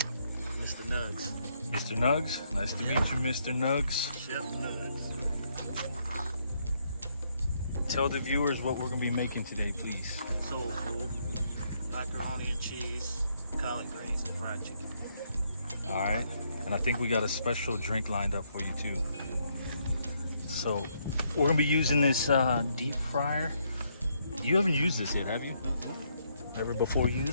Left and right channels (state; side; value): inverted; both; correlation -0.73